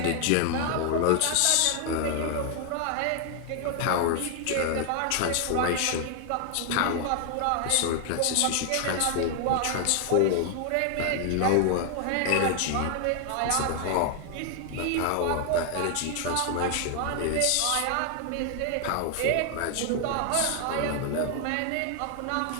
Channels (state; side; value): different; both; correlation 0.00